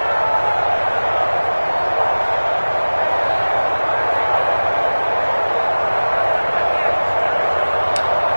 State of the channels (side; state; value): both; inverted; correlation -1.00